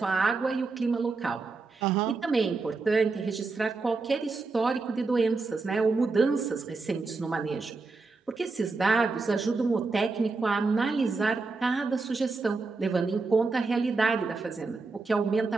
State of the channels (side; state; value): left; quieter; 4.0 dB